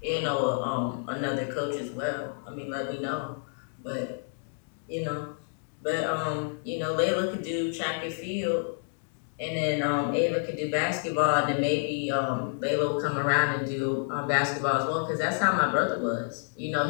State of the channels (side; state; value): right; silent; digital silence